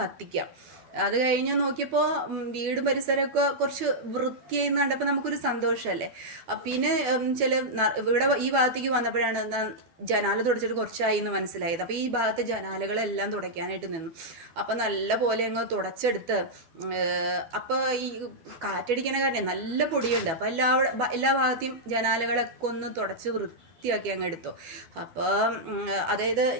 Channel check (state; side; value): late; left; 12 ms